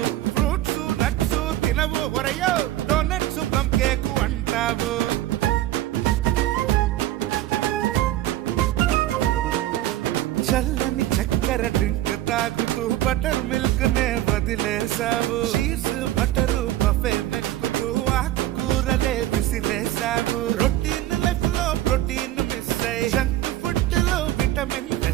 ఫ్రూట్స్ నట్స్ తినవు ఒరయో డోనట్స్ పంకేకు అంటావు చల్లని చక్కెర డ్రింక్ తాగుతూ బటర్ మిల్క్ నే వదిలేసావు చీజ్ బటరు బఫే మెక్కుతూ ఆకుకూరలే విసిరేసావు రొటీన్ లైఫ్ లో ప్రోటీన్ మిస్ అయ్యి జంక్ ఫుడ్ లో విటమిన్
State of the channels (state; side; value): quieter; left; 14.3 dB